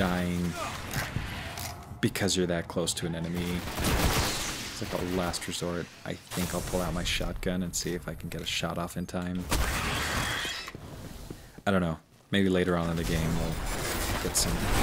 because you're that close to an enemy. It's like a last resort. I think I'll pull out my shotgun and see if I can get a shot off in time. I don't know. Maybe later on in the game we'll get some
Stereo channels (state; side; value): identical; both; correlation 1.00